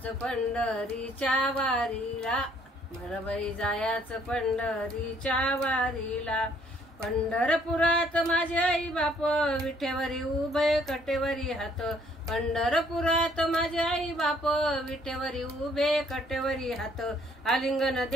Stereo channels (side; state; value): both; normal; correlation 0.63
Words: पंढरीच्या वारीला, मला बाई जायाचं पंढरीच्या वारीला। पंढरपुरात माझे आई बाप विठेवरी उभे कटेवरी हात, पंढरपुरात माझे आई बाप विठेवरी उभे कटेवरी हात। आलिंगन